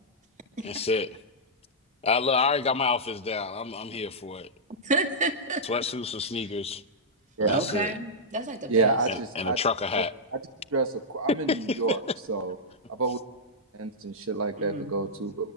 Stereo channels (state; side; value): normal; both; correlation -0.09